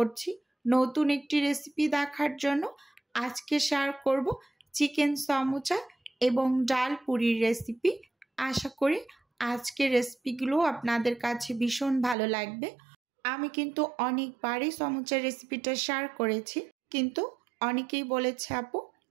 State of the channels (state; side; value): drops out; left; at 12.2 s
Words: নতুন একটি রেসিপি দেখার জন্য। আজকে শেয়ার করব চিকেন সমুচা এবং ডাল পুরির রেসিপি। আশা করি আজকের রেসিপিগুলো আপনাদের কাছে ভীষণ ভালো লাগবে। আমি কিন্তু অনেকবারই সমুচার রেসিপিটা শেয়ার করেছি, কিন্তু অনেকেই বলেছে আপু